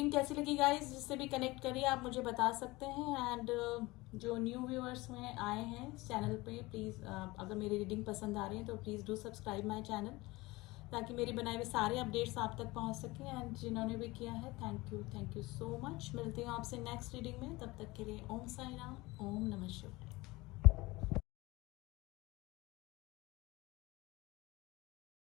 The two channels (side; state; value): right; quieter; 21.4 dB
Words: कैसी लगी गाइस, जिससे भी कनेक्ट करिए आप मुझे बता सकते हैं। एंड जो न्यू व्यूअर्स में आए हैं चैनल पे, प्लीज़ अगर मेरी रीडिंग पसंद आ रही है तो please do subscribe my channel, ताकि मेरे बनाए हुए सारे अपडेट्स आप तक पहुंच सकें। एंड जिन्होंने भी किया है थैंक यू सो मच। मिलती हूँ आपसे नेक्स्ट रीडिंग में, तब तक के लिए ओम साई राम, ओम नमः शिवाय।